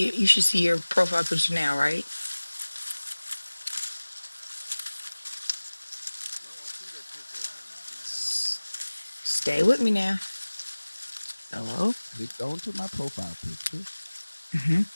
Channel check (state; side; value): inverted; both; correlation -1.00